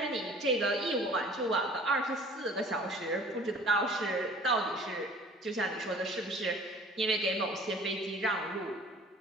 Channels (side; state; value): both; normal; correlation 0.49